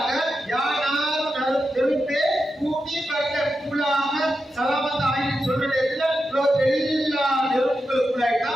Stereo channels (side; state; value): both; normal; correlation 0.89